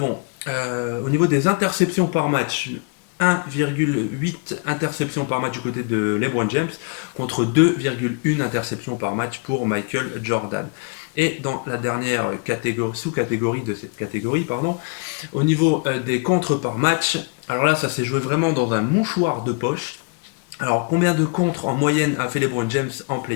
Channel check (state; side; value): quieter; right; 33.8 dB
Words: au niveau des interceptions par match, 1,8 interceptions par match du côté de LeBron James contre 2,1 interceptions par match pour Michael Jordan. Et dans la dernière sous-catégorie de cette catégorie, au niveau des contres par match, alors là ça s'est joué vraiment dans un mouchoir de poche. Alors combien de contres en moyenne a fait LeBron James en